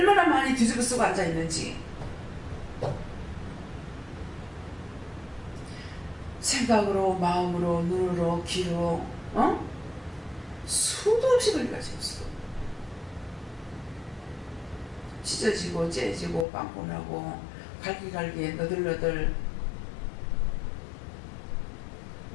많이 뒤집어 쓰고 앉아있는지. 생각으로, 마음으로, 눈으로, 귀로, 수도 없이 걸려가지고 수도. 찢어지고 째지고 빵꾸나고 갈기갈기 너덜너덜.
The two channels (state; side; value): drops out; right; at 16.4 s